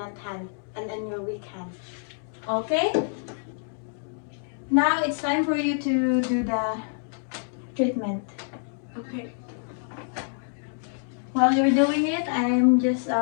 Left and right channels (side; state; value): right; silent; digital silence